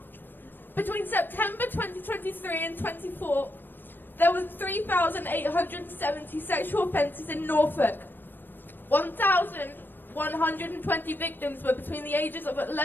Between September 2023 and 24, There were 3,870 sexual offences in Norfolk. 1,120 victims were between the ages of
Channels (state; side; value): late; right; 0.094 ms